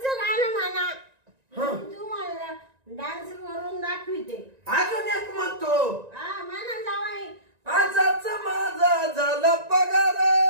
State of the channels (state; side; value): late; left; 1.9 ms